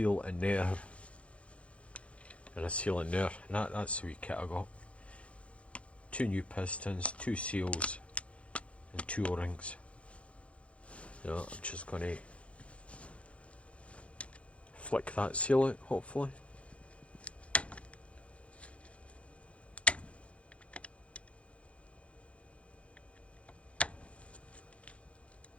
in there and a seal in there, and that's the wee kit I got. 2 new pistons, 2 seals and 2 O-rings. I'm just going to flick that seal out, hopefully.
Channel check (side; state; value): right; late; 0.062 ms